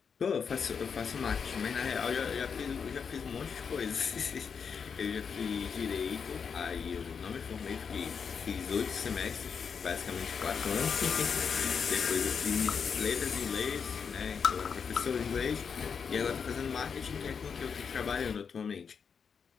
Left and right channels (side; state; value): right; quieter; 6.3 dB